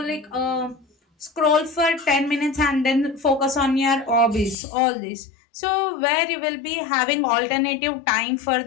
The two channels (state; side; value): drops out; right; at 4.5 s